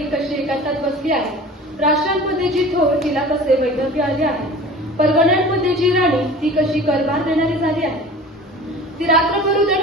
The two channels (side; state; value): both; normal; correlation 0.40